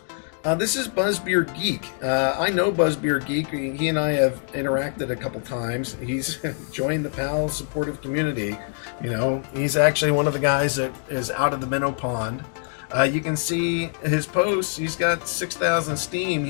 This is Buzzbeer Geek. I know Buzzbeer Geek. He and I have interacted a couple times. He's joined the PAL supportive community. You know, he's actually one of the guys that is out of the minnow pond. You can see his posts. He's got 6,000 Steem.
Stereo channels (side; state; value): right; silent; 61 dB below the other